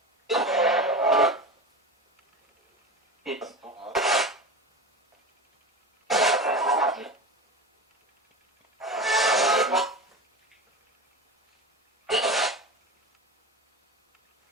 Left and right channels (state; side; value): normal; both; correlation 0.28